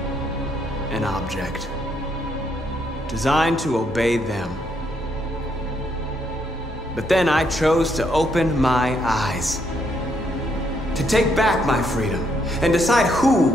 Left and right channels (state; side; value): normal; both; correlation 0.74